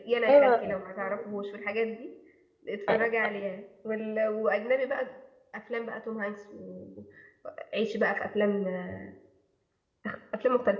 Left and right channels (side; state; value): both; identical; correlation 1.00